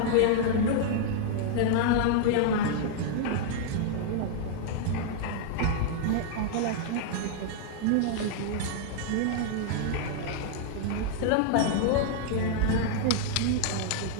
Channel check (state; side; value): different; both; correlation -0.01